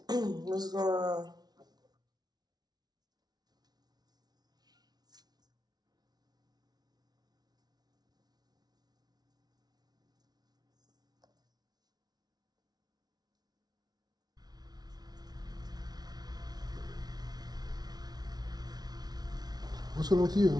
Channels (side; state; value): left; late; 0.19 ms